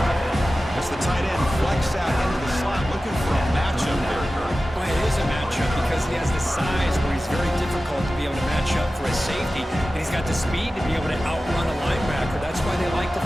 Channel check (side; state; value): both; normal; correlation 0.95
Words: As the tight end flex out into the slot, looking for a matchup there, Kurt. Well, it is a matchup because he has the size where he's very difficult to be able to match up for a safety, and he's got the speed to be able to outrun a linebacker. That's why they like to